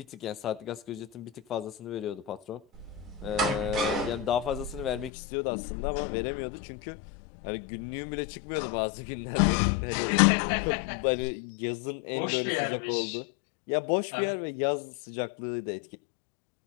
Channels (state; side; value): drops out; right; at 5.1 s